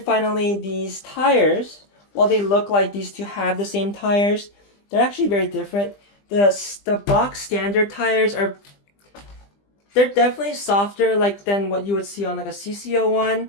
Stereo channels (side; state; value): right; late; 20 ms